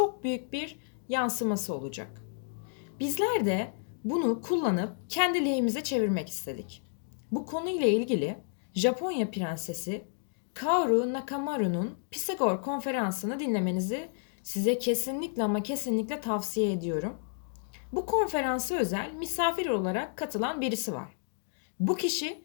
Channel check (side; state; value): right; silent; digital silence